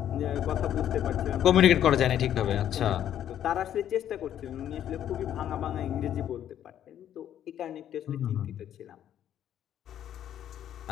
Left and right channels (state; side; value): quieter; right; 10.6 dB